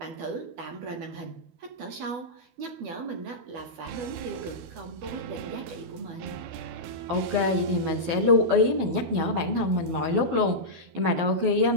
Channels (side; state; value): left; late; 12 ms